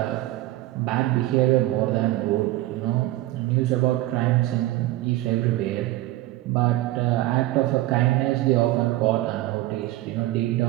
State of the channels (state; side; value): quieter; left; 16.7 dB